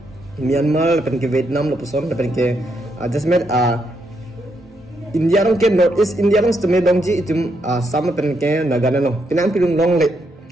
Myanmar lapen ke Vietnam lo puson lapen ke just met India long ke North East India long steme dong ji itum sama pen ke nagana no pinang pilung long le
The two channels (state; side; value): normal; both; correlation 0.78